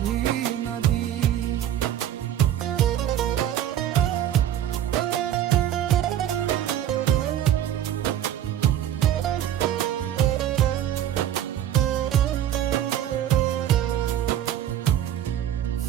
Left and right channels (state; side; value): quieter; left; 11.2 dB